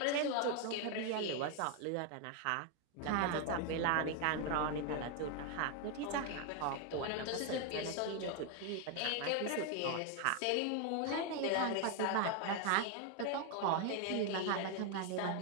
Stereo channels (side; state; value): both; different; correlation 0.01